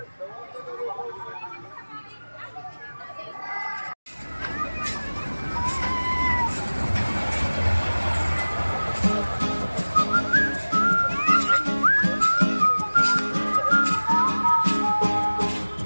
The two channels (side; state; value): both; inverted; correlation -1.00